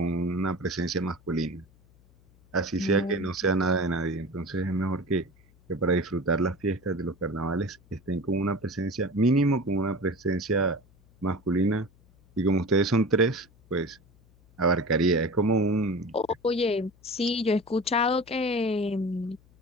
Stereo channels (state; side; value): noise; left; hum, 29 dB below the sound